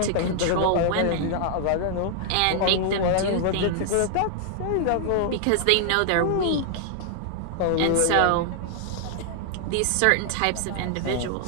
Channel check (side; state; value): both; different; correlation 0.00